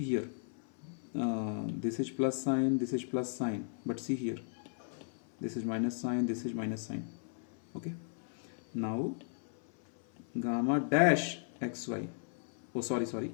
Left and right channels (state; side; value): silent; right; 54 dB below the other